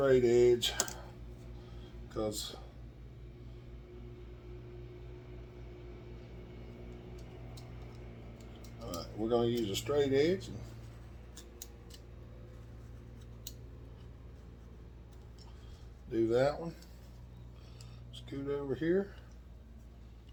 edge, because alright, we're going to use a straight edge. And do that one. Scoot over here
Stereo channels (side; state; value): both; identical; correlation 1.00